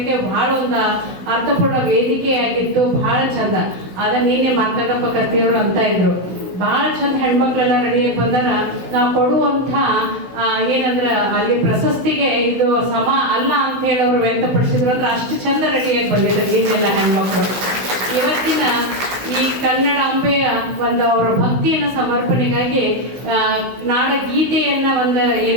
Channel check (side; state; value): left; late; 16 ms